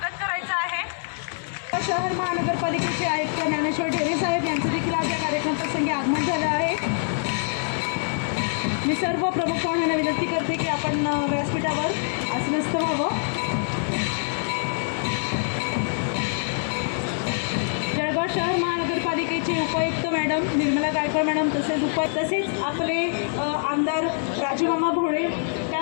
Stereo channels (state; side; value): silent; right; digital silence